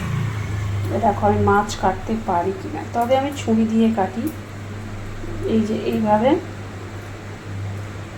দেখো আমি মাছ কাটতে পারি কিনা, তবে আমি ছুরি দিয়ে কাটি। এই যে এইভাবে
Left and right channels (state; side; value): identical; both; correlation 1.00